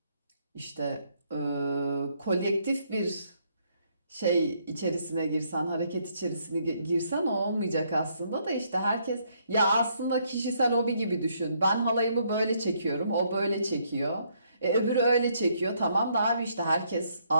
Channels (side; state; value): both; inverted; correlation -0.71